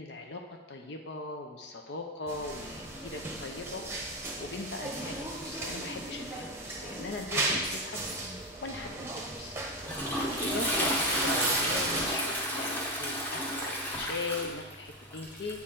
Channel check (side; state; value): both; normal; correlation 0.12